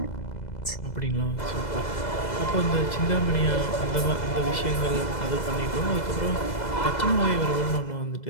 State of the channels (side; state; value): right; late; 2.0 ms